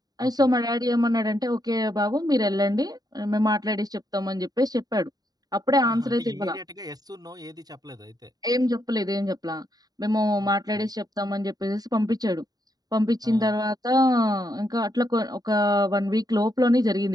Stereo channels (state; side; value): late; left; 0.18 ms